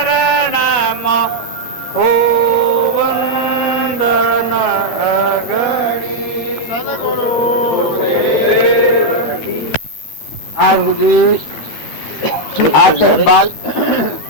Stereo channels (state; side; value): late; right; 13 ms